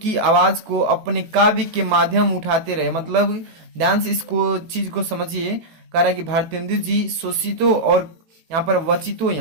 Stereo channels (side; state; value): left; late; 18 ms